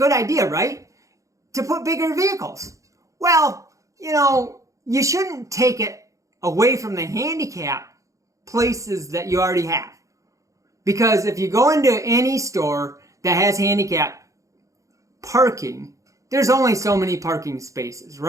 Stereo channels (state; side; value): late; left; 0.15 ms